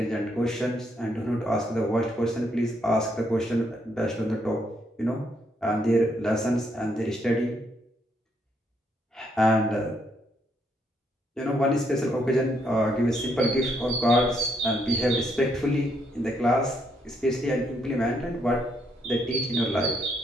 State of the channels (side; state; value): both; normal; correlation 0.74